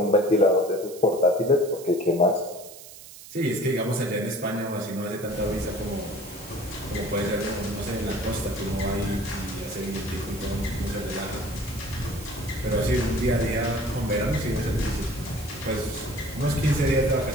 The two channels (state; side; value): noise; right; hiss, 16 dB below the sound